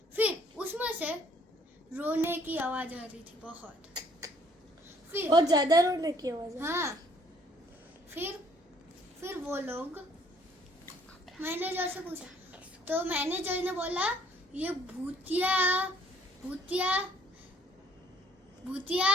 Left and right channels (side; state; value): both; normal; correlation 0.61